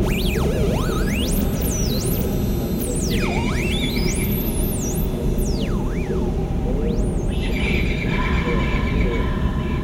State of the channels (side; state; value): both; identical; correlation 1.00